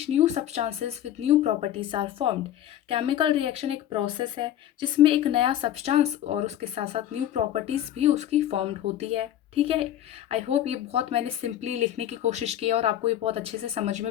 new substances with new properties are formed. Chemical reaction एक प्रोसेस है जिसमें एक नया सब्सटेंस और उसके साथ साथ न्यू प्रॉपर्टीज भी उसकी फॉर्म्ड होती है। ठीक है। आई होप ये बहुत मैंने सिंपली लिखने की कोशिश की है और आपको ये बहुत अच्छे से समझ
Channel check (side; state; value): right; quieter; 11.6 dB